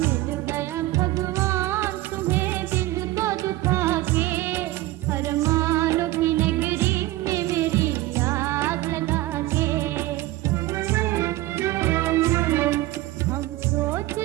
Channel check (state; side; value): quieter; left; 17.2 dB